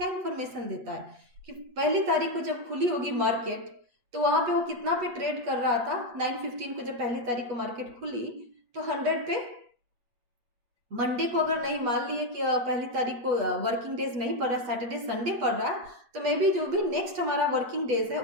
इंफॉर्मेशन देता है कि पहली तारीख को जब खुली होगी मार्केट तो वहां पे वो कितना पे ट्रेड कर रहा था। 9:15 को जब पहली तारीख को मार्केट खुली तो 100 पे। मंडे को अगर नहीं मान लिए कि पहली तारीख को वर्किंग डेज नहीं पड़ रहा है, सैटरडे संडे पड़ रहा है, तो मे बी जो भी नेक्स्ट हमारा वर्किंग डेज है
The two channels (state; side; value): late; left; 8.2 ms